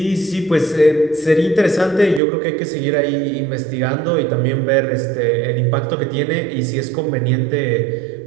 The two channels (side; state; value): left; drops out; at 2.2 s